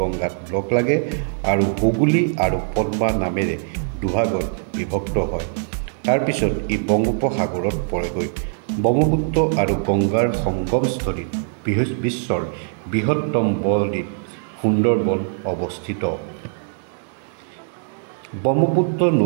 লগ লাগে আৰু হুগলী আৰু পদ্মা নামেৰে দুভাগত বিভক্ত হয়। তাৰপিছত ই বংগোপসাগৰত পৰেগৈ। ব্ৰহ্মপুত্ৰ আৰু গংগাৰ সংগমস্থলীত বিশ্বৰ বৃহত্তম বদ্বীপ সুন্দৰবন অৱস্থিত। ব্ৰহ্মপুত্ৰ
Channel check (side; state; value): left; silent; 65 dB below the other